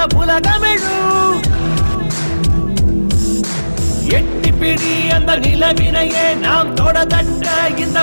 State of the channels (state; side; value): inverted; both; correlation -1.00